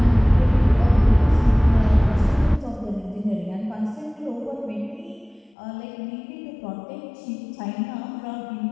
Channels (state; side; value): drops out; right; at 5.6 s